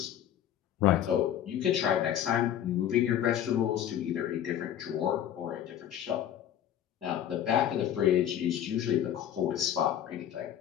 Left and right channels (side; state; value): right; quieter; 10.5 dB